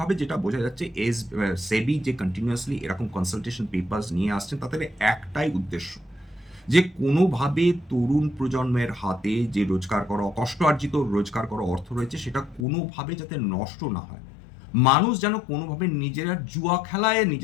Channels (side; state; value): right; drops out; at 12.7 s